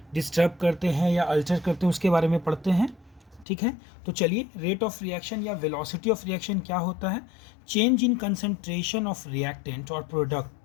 डिस्टर्ब करते हैं या अल्टर करते हैं उसके बारे में पढ़ते हैं। ठीक है, तो चलिए, रेट ऑफ रिएक्शन या वेलोसिटी ऑफ रिएक्शन क्या होता है? Change in concentration of reactant और product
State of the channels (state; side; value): drops out; right; at 3.5 s